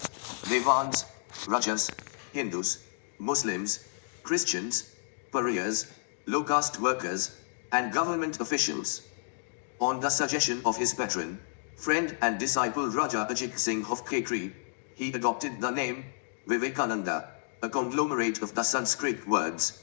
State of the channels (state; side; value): silent; right; digital silence